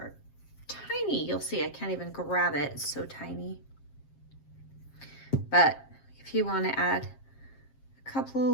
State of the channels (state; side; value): late; right; 7.4 ms